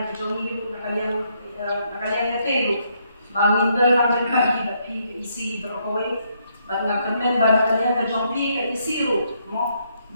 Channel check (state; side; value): inverted; both; correlation -0.74